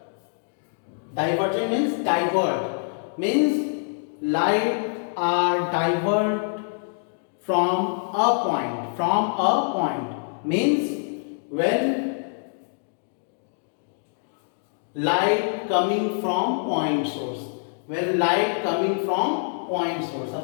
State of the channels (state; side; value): silent; right; digital silence